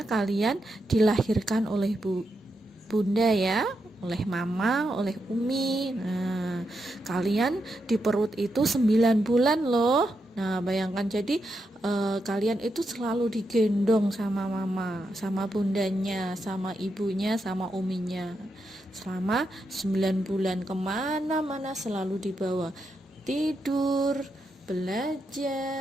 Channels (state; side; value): normal; both; correlation 0.84